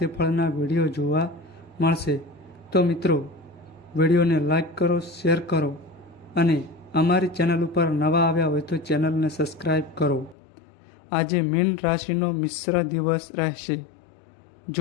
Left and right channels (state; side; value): drops out; right; at 10.4 s